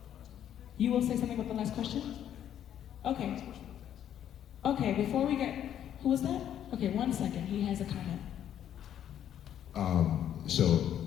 You will say something about the last question? Okay. Okay, before we get, Who was that? Okay, 1 second. He has a comment. So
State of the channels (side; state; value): right; quieter; 10.3 dB